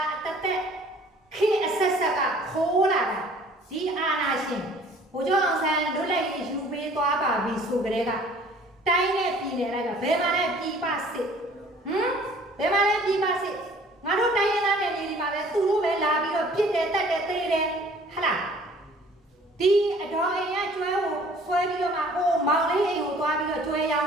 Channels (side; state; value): both; normal; correlation 0.53